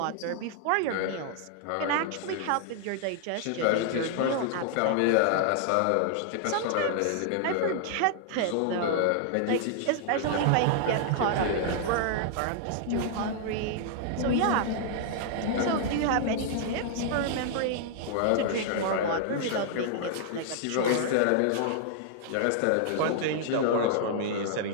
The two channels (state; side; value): different; both; correlation -0.01